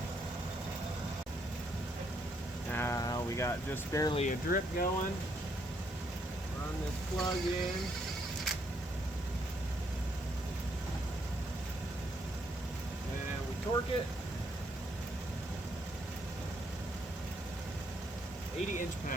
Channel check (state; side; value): normal; both; correlation 0.73